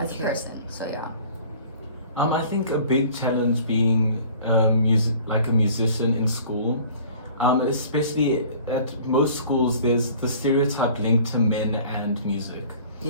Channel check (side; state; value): both; inverted; correlation -0.49